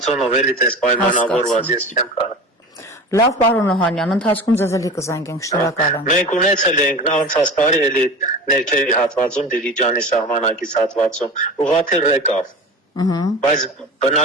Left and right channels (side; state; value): both; normal; correlation 0.33